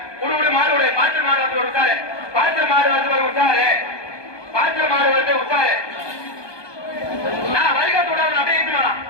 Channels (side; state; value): right; late; 1.2 ms